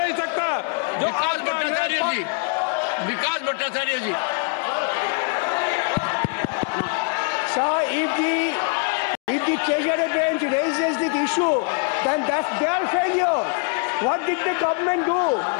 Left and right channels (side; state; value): right; quieter; 37.5 dB